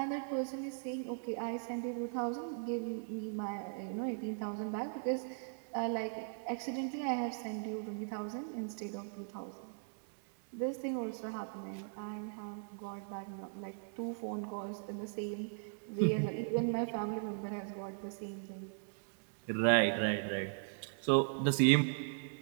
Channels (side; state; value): left; silent; digital silence